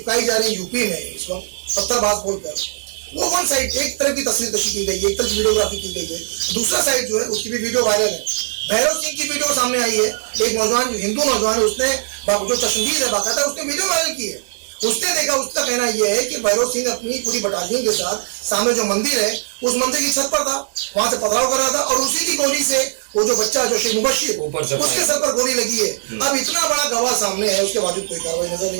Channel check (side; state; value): left; silent; digital silence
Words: जा रही यूपी में इस वक्त पत्थरबाज बोलकर, वो वन साइड एक तरफ की तस्वीर कशी की गई है, एक तरफ वीडियोग्राफी की गई है, दूसरा साइड जो है उसकी भी वीडियो वायरल है। भैरव सिंह की वीडियो सामने आई है, एक नौजवान जो हिंदू नौजवान है, उसने जो चश्मदीद है बाकायदा उसने वीडियो वायरल की है। उसने देखा, उसका कहना यह है कि भैरव सिंह अपनी पूरी बटालियन के साथ सामने जो मंदिर है उस मंदिर की छत पर था, वहां से पथराव कर रहा था और उसी की गोली से वो जो बच्चा जो शेख मुबश्शिर उसके सर पर गोली लगी है। अब इतना बड़ा गवाह सामने है, उसके बावजूद कोई कार्रवाई नजर